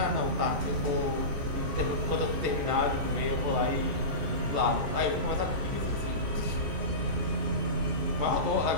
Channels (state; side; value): late; left; 14 ms